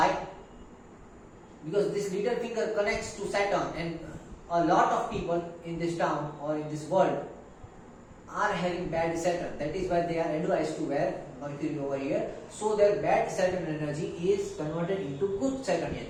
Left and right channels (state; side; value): identical; both; correlation 1.00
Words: Because this little finger connects to Saturn, and a lot of people in this town or in this world are having bad Saturn. That is why they are advised to wear Mercury over here, so their bad Saturn energy is converted into good Saturnian